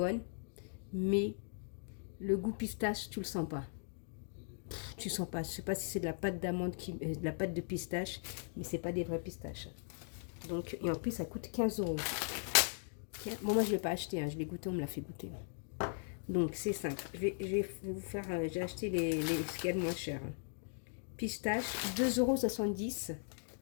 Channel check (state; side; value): silent; right; digital silence